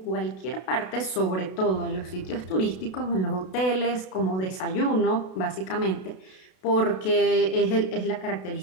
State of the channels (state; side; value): late; right; 32 ms